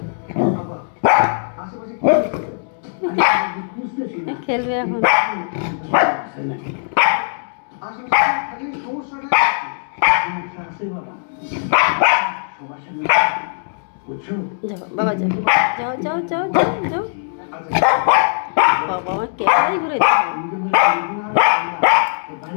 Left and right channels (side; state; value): right; silent; digital silence